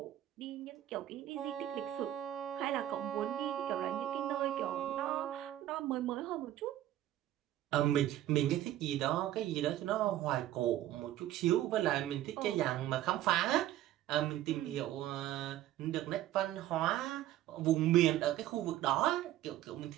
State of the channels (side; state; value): left; quieter; 13.4 dB